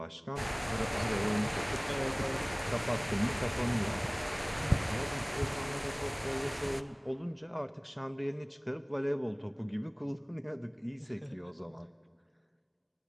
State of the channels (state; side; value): identical; both; correlation 1.00